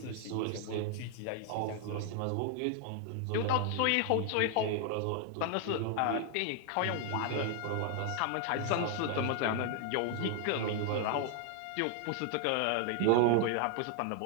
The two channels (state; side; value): different; both; correlation 0.00